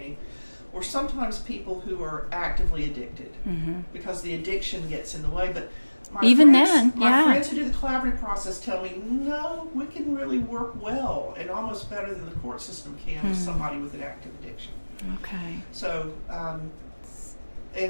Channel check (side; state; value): both; inverted; correlation -1.00